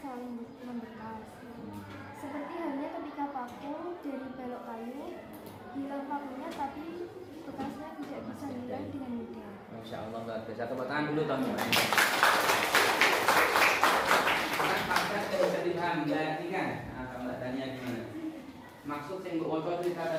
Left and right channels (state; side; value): identical; both; correlation 1.00